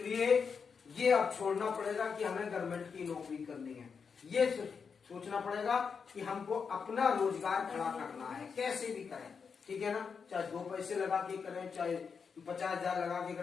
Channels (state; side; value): quieter; right; 5.9 dB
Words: ये अब छोड़ना पड़ेगा कि हमें गवर्नमेंट की नौकरी करनी है। ये सोचना पड़ेगा कि हमको अपना रोजगार खड़ा करना है, कैसे भी करें, ठीक है ना। चाहे 2 पैसे लगा के करें, चाहे 50,000 लगा के